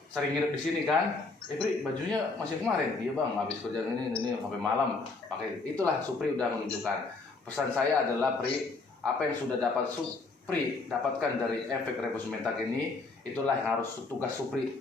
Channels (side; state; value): right; quieter; 3.8 dB